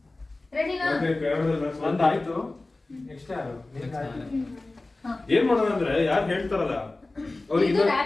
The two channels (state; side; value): quieter; right; 3.1 dB